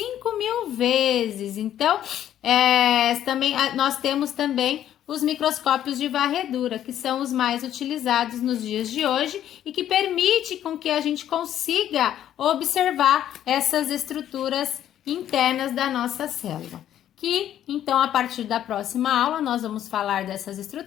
vezes. Então, também, nós temos também os microscópios de varredura, que são os mais utilizados nos dias de hoje e que permite com que a gente consiga observar essas estruturas internas da nossa célula. Que, então, a partir da próxima aula, nós vamos falar dessas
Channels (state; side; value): quieter; right; 11.2 dB